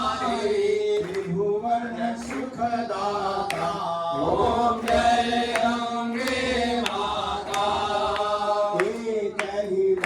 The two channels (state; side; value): identical; both; correlation 1.00